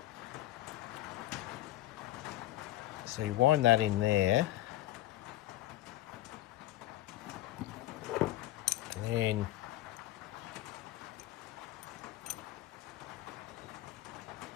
So you wind that in there, and then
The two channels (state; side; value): quieter; right; 15.1 dB